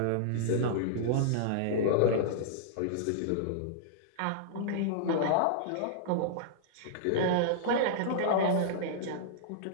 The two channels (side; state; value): both; different; correlation -0.02